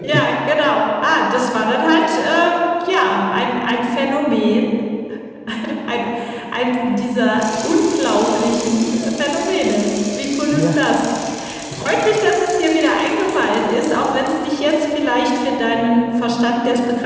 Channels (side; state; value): both; identical; correlation 1.00